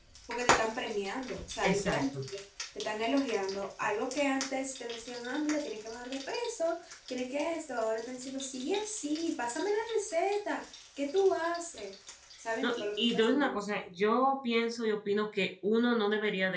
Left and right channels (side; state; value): both; identical; correlation 1.00